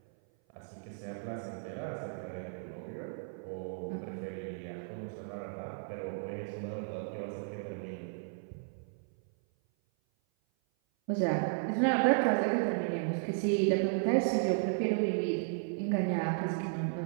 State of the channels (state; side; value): silent; left; 55 dB below the other